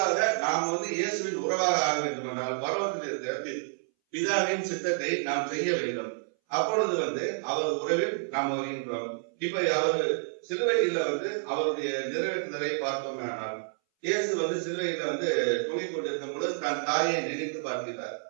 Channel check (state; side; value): silent; left; 58 dB below the other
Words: நாம் இயேசுவின் உறவாக ஆக வேண்டும் என்றால் பரலோகத்தில் இருக்கிற பிதாவின் சித்தத்தை நாம் செய்ய வேண்டும். அப்பொழுது அவர் உறவில் நாம் வருகின்றோம். இப்ப அவர் சிலுவையில அவருடைய நிறைவேற்றுதலை பார்த்தோம். ஆனால் இயேசு சிலுவையில தொங்கிக் கொண்டிருக்கும் பொழுது தன் தாயை நினைத்து பார்க்கிறார்.